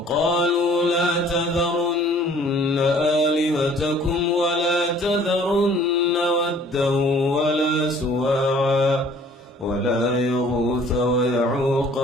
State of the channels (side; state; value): both; normal; correlation 0.54